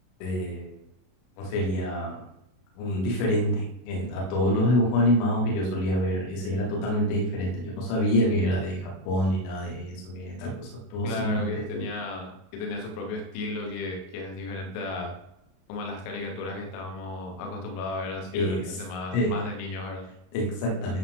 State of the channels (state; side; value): late; right; 33 ms